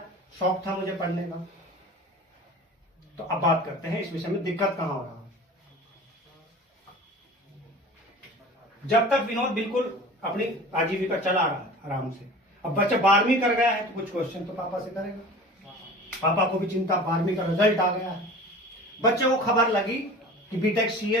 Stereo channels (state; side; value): normal; both; correlation 0.39